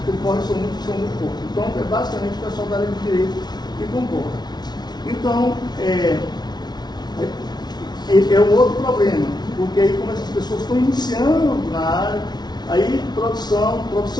concorrem são muito poucos. Então, é basicamente o pessoal da área de direito que concorre. Então, é um outro problema, porque aí como essas pessoas estão iniciando na área, aí produção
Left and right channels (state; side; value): late; right; 0.20 ms